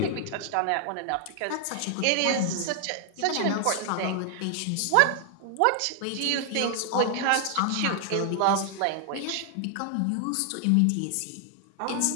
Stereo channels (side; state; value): both; different; correlation 0.00